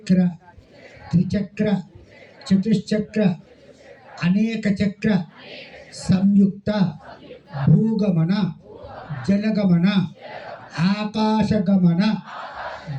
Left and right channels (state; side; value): identical; both; correlation 1.00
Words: त्रिचक्र चतुश्चक्र अनेक चक्र संयुक्त भूगमन जलगमन आकाशगमन